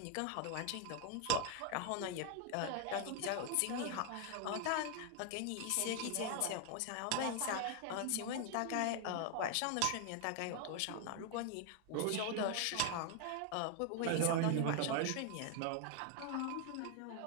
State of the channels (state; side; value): different; both; correlation 0.00